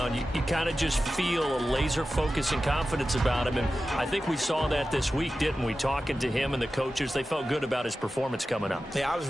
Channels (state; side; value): normal; both; correlation 0.94